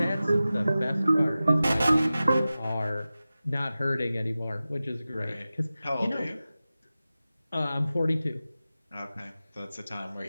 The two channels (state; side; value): inverted; both; correlation -0.95